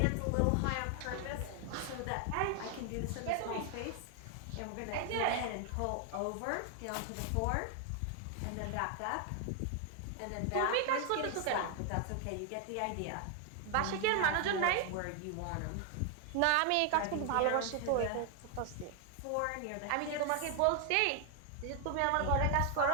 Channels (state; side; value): different; both; correlation 0.00